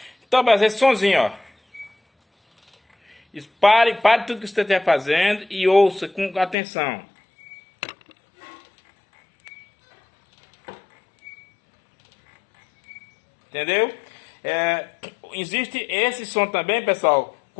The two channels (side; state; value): right; drops out; at 6.6 s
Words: Então, mas esse sonzinho, ó, pare tudo que você estiver fazendo e ouça com atenção. Entendeu? Existe esse som também, pessoal,